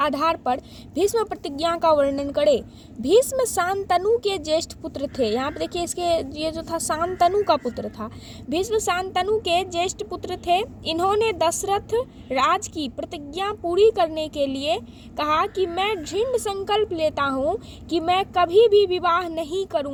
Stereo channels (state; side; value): identical; both; correlation 1.00